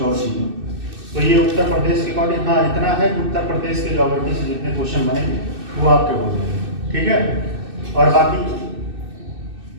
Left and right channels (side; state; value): left; late; 2.6 ms